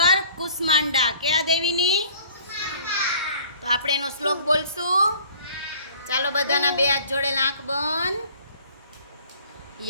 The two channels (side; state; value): both; inverted; correlation -0.52